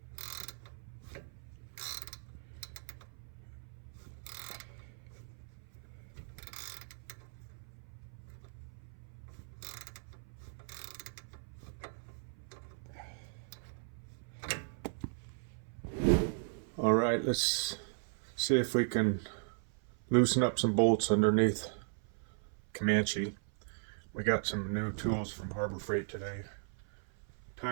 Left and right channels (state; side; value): silent; left; 53 dB below the other